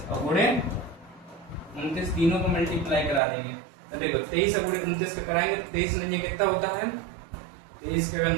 और गुणे 29, तीनों को मल्टीप्लाई करा देंगे। तो देखो 23 और गुणे 29 का कराएंगे, 23 नहीं कितना होता है 23 के अगर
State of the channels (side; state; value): left; drops out; at 3.2 s